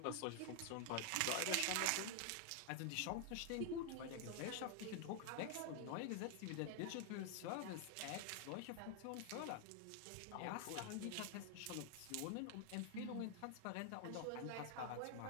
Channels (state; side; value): different; both; correlation 0.00